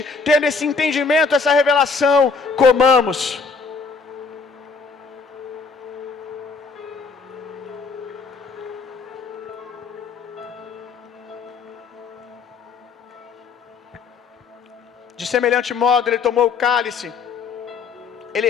tendo esse entendimento, essa revelação, comamos. De semelhante modo, ele tomou o cálice, ele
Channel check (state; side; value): quieter; right; 4.9 dB